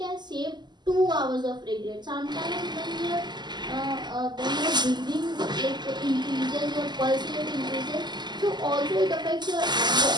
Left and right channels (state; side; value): late; left; 0.21 ms